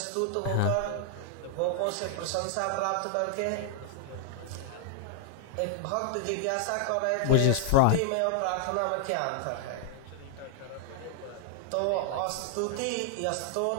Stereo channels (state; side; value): different; both; correlation 0.00